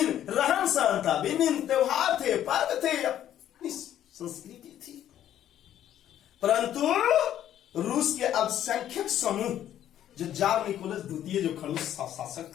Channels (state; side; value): quieter; right; 11.3 dB